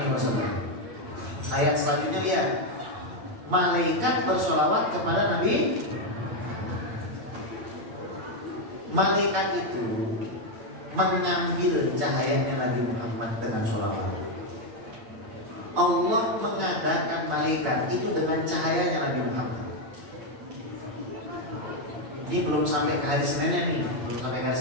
Ayat selanjutnya lihat, malaikat bersolawat kepada Nabi. Malaikat itu mengambil cahayanya Nabi Muhammad dengan sholawat. Allah mengadakan malaikat itu dengan cahayanya Nabi Muhammad. Ini belum sampai ke hari Seninnya nih, belum sampai ke hari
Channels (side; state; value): left; late; 9.2 ms